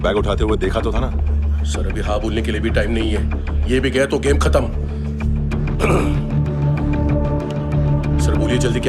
उठाते हुए देखा तो था ना? सर अभी हाँ बोलने के लिए भी टाइम नहीं है। ये भी गया तो गेम खत्म। सर बोलिए जल्दी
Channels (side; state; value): both; identical; correlation 1.00